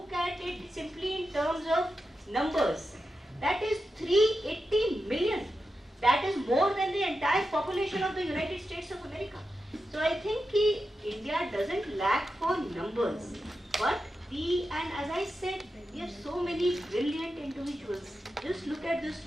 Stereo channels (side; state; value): both; normal; correlation 0.89